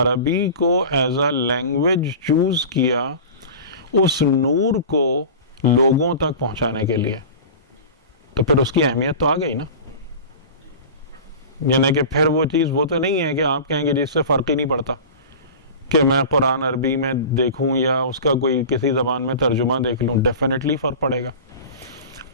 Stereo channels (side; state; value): both; inverted; correlation -0.35